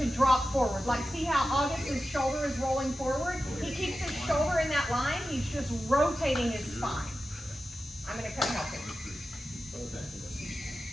drop forward. Like, see how August's shoulder is rolling forward? He keeps his shoulder in that line. He's just rotating his spine. I'm going to come help him.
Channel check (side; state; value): both; normal; correlation 0.93